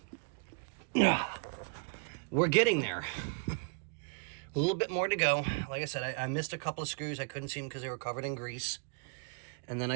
we're getting there. A little bit more to go. Like I said, I missed a couple of screws. I couldn't see them because they were covered in grease. And then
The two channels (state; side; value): quieter; left; 37.1 dB